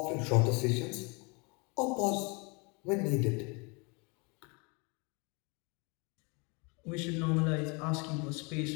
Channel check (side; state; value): right; quieter; 30.8 dB